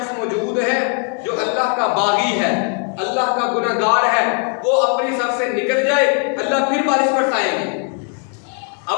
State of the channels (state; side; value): quieter; right; 39.9 dB